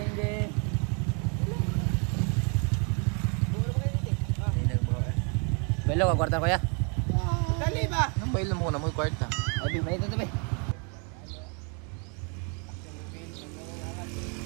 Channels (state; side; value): quieter; left; 37.2 dB